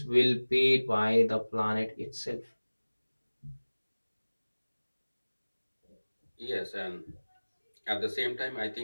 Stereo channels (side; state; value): both; inverted; correlation -1.00